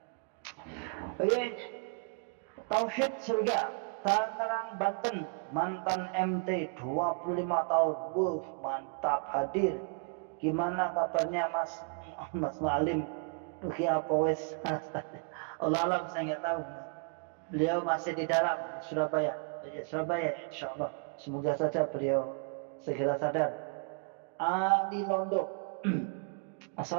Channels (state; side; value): quieter; left; 39.1 dB